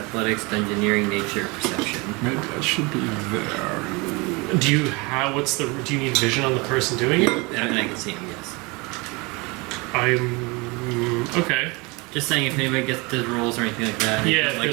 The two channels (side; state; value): left; quieter; 26.8 dB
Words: engineering, nature, perception. Maybe that should be there. Do you do you need vision on the person doing it? And I can see him, yes. Okay. Just saying, if anybody gets the rolls or anything like that, Yeah, if like